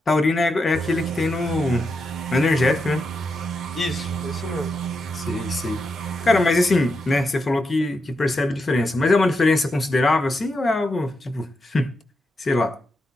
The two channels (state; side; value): normal; both; correlation 0.85